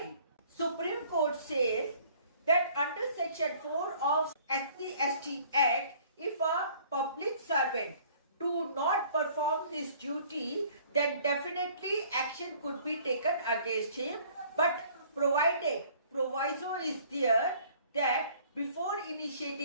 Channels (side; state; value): both; inverted; correlation -0.56